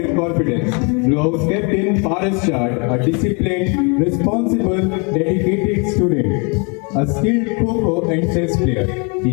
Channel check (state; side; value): quieter; right; 33.6 dB